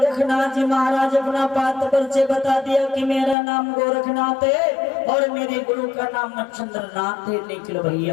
जी महाराज अपना पात परिचय बता दिया कि मेरा नाम गोरखनाथ है और मेरे गुरु का नाम मच्छिंद्रनाथ है, निकल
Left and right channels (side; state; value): right; drops out; at 3.4 s